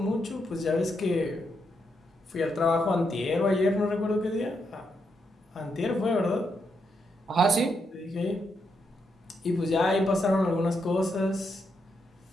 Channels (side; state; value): both; normal; correlation 0.80